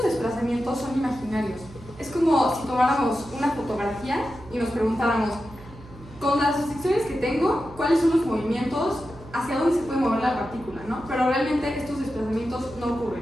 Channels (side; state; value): right; noise; hum, 19 dB below the sound